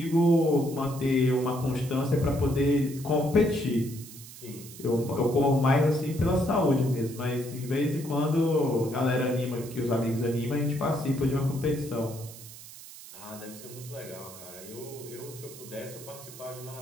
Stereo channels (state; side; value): noise; right; hiss, 16 dB below the sound